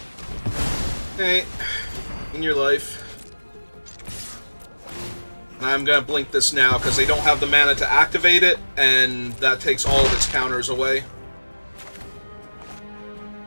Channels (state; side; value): inverted; both; correlation -1.00